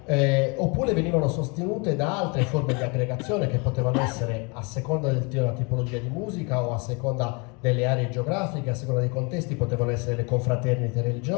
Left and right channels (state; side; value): quieter; right; 31.3 dB